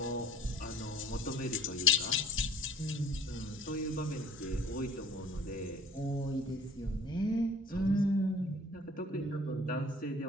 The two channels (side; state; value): both; normal; correlation 0.50